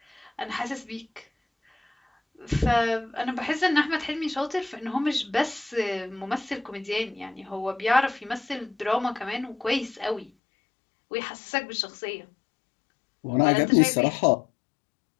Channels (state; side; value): drops out; right; at 10.3 s